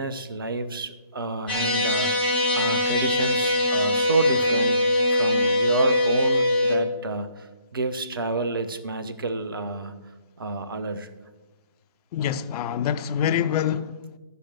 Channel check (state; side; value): inverted; both; correlation -0.61